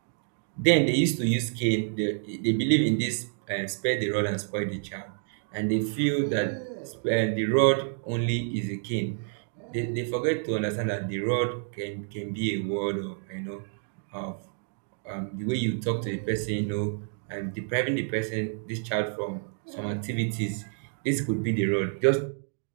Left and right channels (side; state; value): left; silent; 59 dB below the other